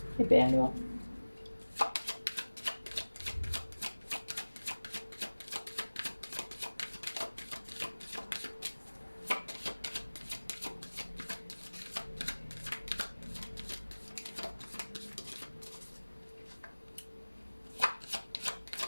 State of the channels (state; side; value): inverted; both; correlation -1.00